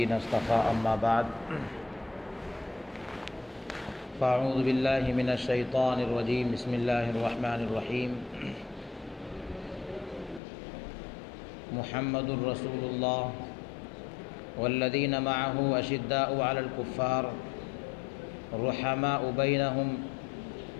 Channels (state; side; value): drops out; right; at 10.4 s